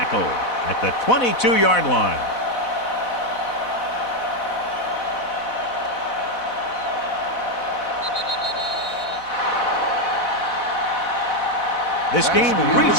at the 22-yard line. This game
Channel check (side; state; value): right; late; 4.1 ms